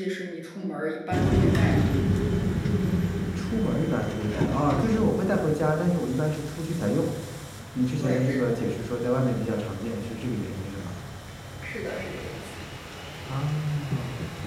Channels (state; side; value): identical; both; correlation 1.00